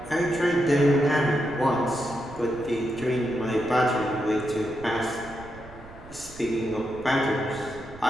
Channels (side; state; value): right; noise; rumble, 19 dB below the sound